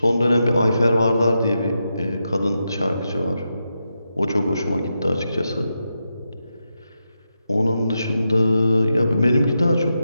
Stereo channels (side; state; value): both; inverted; correlation -0.87